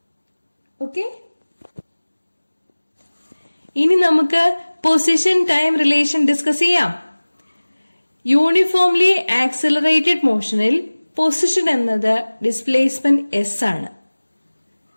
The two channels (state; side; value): inverted; both; correlation -1.00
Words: Okay? ഇനി നമുക്ക് position time relation discuss ചെയ്യാം. Uniformly accelerated മോഷനിൽ പൊസിഷൻ എന്നത് ഡിസ്പ്ലേസ്മെന്റ് എസ് ആണ്.